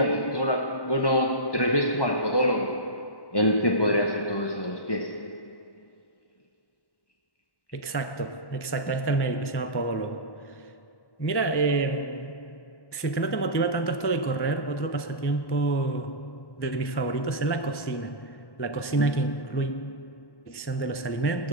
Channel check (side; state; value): right; late; 1.1 ms